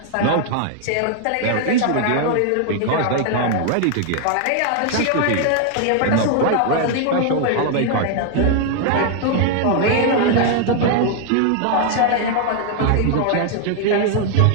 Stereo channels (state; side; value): different; both; correlation 0.00